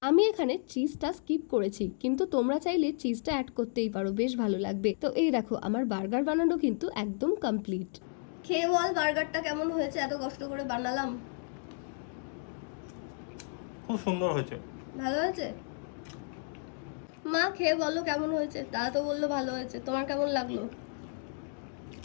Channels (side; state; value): right; silent; 56 dB below the other